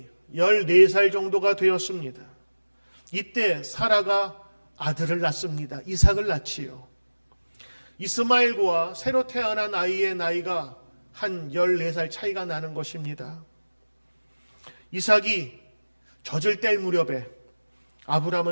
14살 정도가 되었습니다. 이때 사라가 아들을 낳습니다. 이삭을 낳지요. 이스마엘과 새로 태어난 아이의 나이가 한 14살 차이가 나는 것입니다. 이삭이 젖을 뗄 무렵에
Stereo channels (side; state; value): both; inverted; correlation -1.00